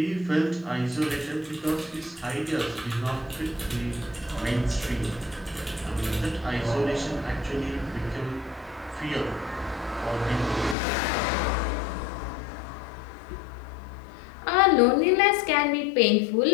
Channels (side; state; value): right; drops out; at 10.8 s